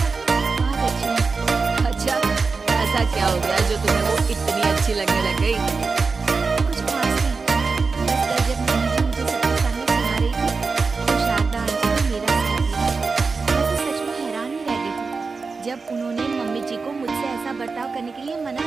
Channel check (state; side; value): quieter; left; 4.5 dB